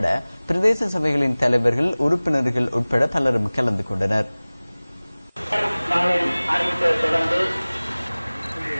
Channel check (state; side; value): inverted; both; correlation -0.99